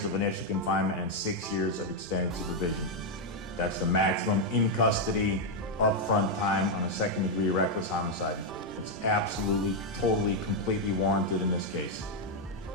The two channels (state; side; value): normal; both; correlation 0.01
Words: of initial confinement and 6 years of extended supervision. That's the maximum in custody, upfront time on a second-degree reckless homicide. It's absolutely, totally, completely warranted in this case.